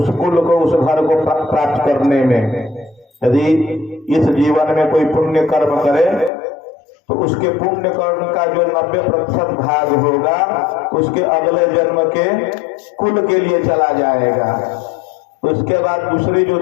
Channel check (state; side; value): drops out; right; at 6.3 s